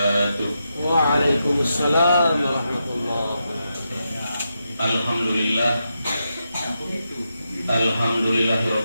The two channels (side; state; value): both; inverted; correlation -0.86